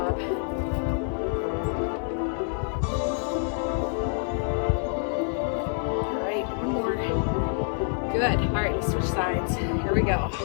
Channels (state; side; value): silent; right; 60 dB below the other